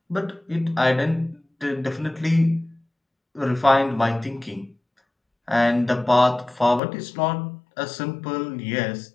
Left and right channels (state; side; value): drops out; right; at 6.8 s